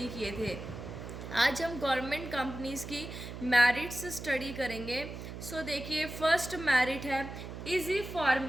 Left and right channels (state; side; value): noise; right; hum, 10 dB below the sound